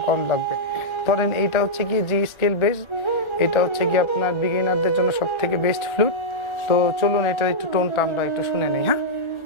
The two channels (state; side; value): late; right; 1.3 ms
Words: কম লাগবে। ধরেন এইটা হচ্ছে গিয়ে জি স্কেল বেস, এটা হচ্ছে গিয়ে আপনার বিগিনারদের জন্য সব থেকে বেস্ট ফ্লুট। তো চলুন এটা একটু টোনটা আমরা একটু শুনে নিই। হ্যাঁ,